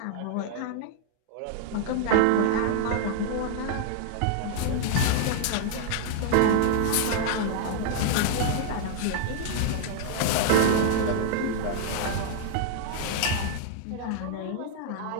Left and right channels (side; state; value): both; different; correlation 0.00